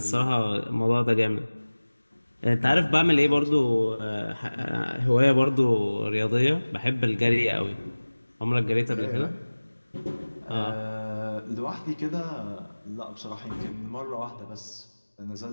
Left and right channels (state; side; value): inverted; both; correlation -1.00